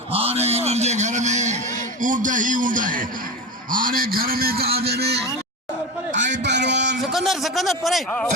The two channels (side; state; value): both; normal; correlation 0.24